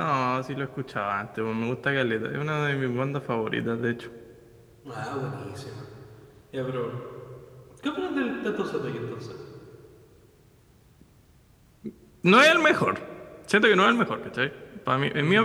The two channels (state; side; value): identical; both; correlation 1.00